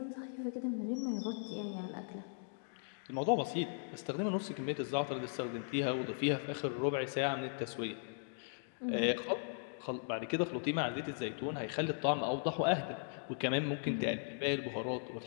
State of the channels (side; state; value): right; silent; digital silence